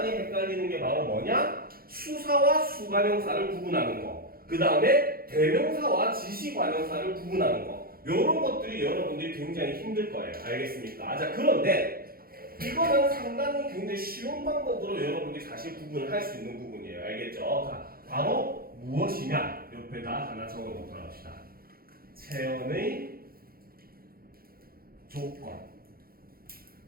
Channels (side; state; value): left; late; 0.43 ms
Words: 헷갈리는 게 바로 뭐냐? 수사와 수관형사를 구분하는 거. 그 다음에 대명사와 지시관형사를 구분하는 거. 요런 것들이 여러분들이 굉장히 힘들 거예요. 알겠습니까? 자, 그런데 이거는 상당히 굉장히 쉬운 방법으로 여러분들이 사실 구분을 할 수 있는 부분이에요. 알겠죠? 자, 바로 무엇이냐? 옆에다 하나 적어 놓도록 합시다. 체언의 조건.